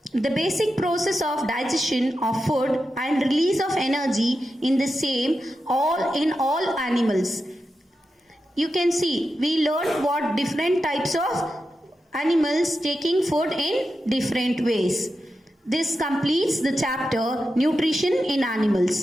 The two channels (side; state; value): both; normal; correlation 0.89